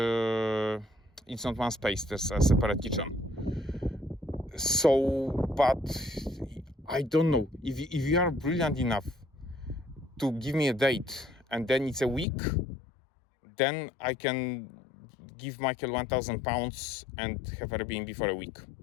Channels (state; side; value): drops out; right; at 12.2 s